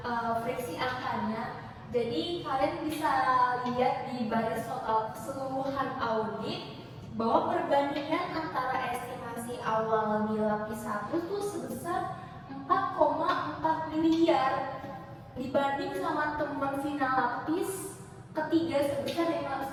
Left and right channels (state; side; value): identical; both; correlation 1.00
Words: friksi angkanya. Jadi kalian bisa lihat di baris total keseluruhan audit bahwa perbandingan antara estimasi awal di lapis 1 tuh sebesar 4,4 miliar dibanding sama teman final lapis ketiga sebesar